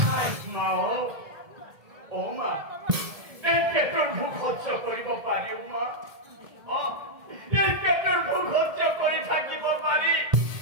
মা মা এই পেটৰ ভোক সহ্য কৰিব পাৰিও মা এই পেটেৰ ভোগ হত্যা কৰে থাকিব পাৰি,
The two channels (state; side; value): late; left; 1.8 ms